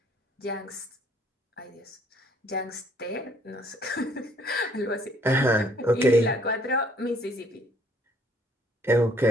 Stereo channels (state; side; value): normal; both; correlation 0.63